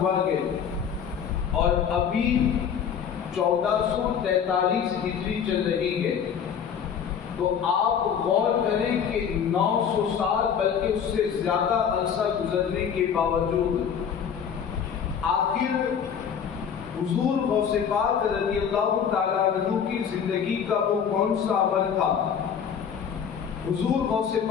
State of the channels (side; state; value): right; quieter; 7.6 dB